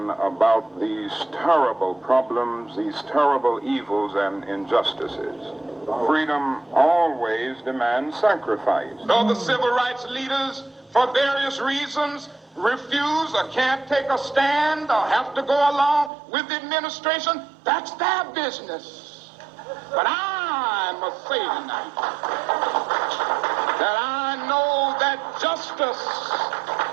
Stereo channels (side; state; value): left; drops out; at 16.1 s